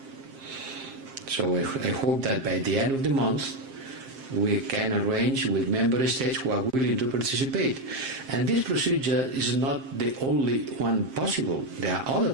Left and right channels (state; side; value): late; left; 7.5 ms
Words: So I hope that by the end of the month, we can arrange with member states who are willing to participate. And this procedure is not the only one possible. There are other